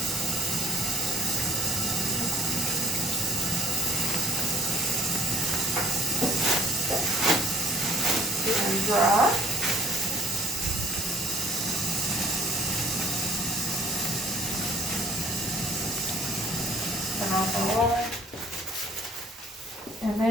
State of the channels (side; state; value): both; normal; correlation 0.57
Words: Dry. Turn off the water. And